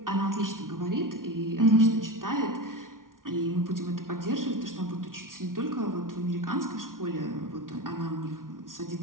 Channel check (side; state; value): left; late; 0.90 ms